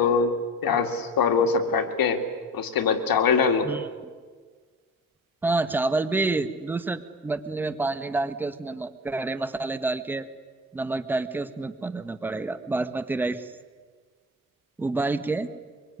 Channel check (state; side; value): normal; both; correlation 0.31